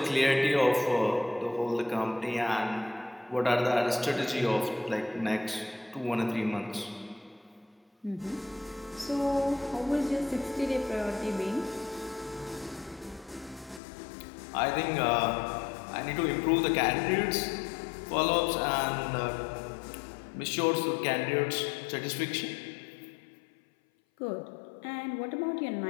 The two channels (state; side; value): drops out; right; at 13.8 s